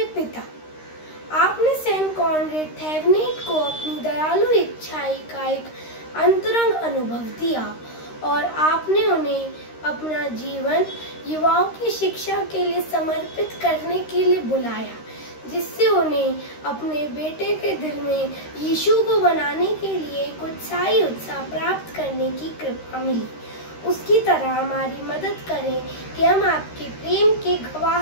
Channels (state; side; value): late; right; 13 ms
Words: पिता, आपने सेंट कॉनरेड थेवेनिट को अपनी दयालु इच्छाई का एक अंतरंग अनुभव दिया और आपने उन्हें अपना जीवन युवाओं की शिक्षा के लिए समर्पित करने के लिए बुलाया, जिससे उन्हें अपने बेटे के दिल में यीशु को बनाने के लिए एक उत्साही उत्साह प्राप्त करने की कृपा मिली। उसकी तरह हमारी मदद करें कि हम आपके प्रेम के